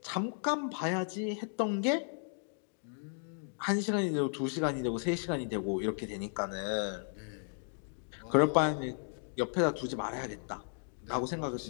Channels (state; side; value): silent; right; 55 dB below the other